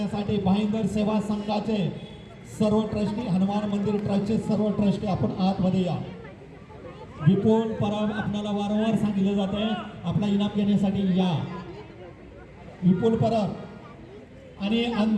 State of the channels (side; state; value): both; identical; correlation 1.00